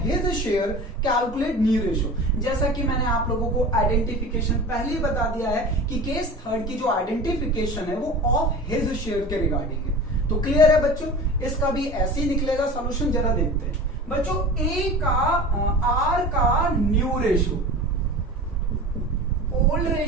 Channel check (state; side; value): normal; both; correlation 0.35